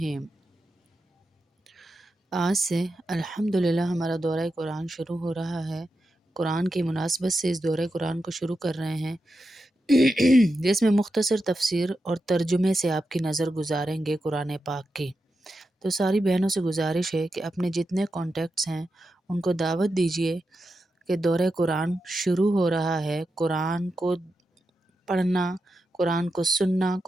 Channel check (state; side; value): normal; both; correlation 0.88